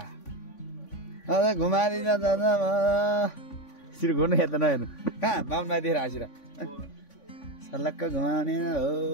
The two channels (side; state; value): right; late; 3.5 ms